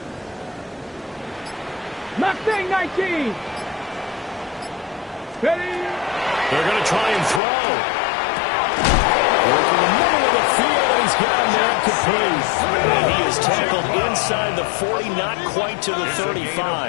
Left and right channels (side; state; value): right; drops out; at 7.4 s